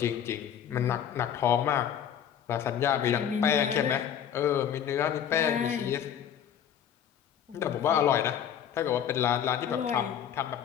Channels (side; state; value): right; quieter; 9.2 dB